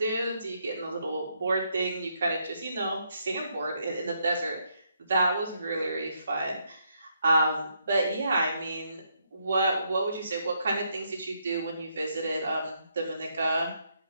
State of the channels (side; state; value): both; inverted; correlation -0.76